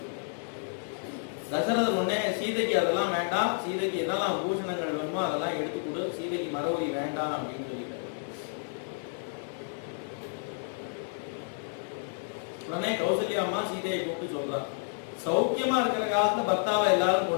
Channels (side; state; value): right; silent; digital silence